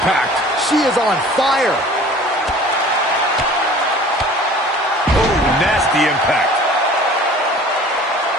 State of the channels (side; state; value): both; normal; correlation 0.46